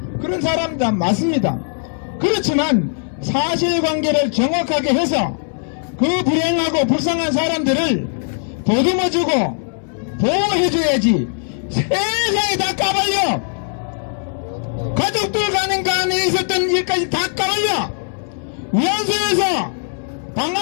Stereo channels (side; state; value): right; silent; 61 dB below the other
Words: 그런 사람들 맞습니다. 그렇지만 사실관계를 정확하게 해서 그 불행하고 불쌍한 사람들을 보듬어주고 보호해줘야지. 세상에 다 까발려. 가족들 가는 간에 있었던 일까지 다 까발려. 위안소에서 방